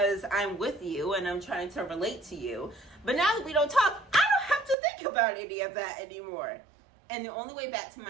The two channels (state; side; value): drops out; left; at 4.8 s